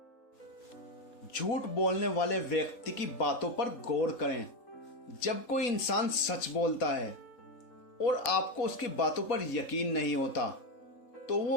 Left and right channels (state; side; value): late; right; 4.1 ms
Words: झूठ बोलने वाले व्यक्ति की बातों पर गौर करें। जब कोई इंसान सच बोलता है और आपको उसकी बातों पर यकीन नहीं होता, तो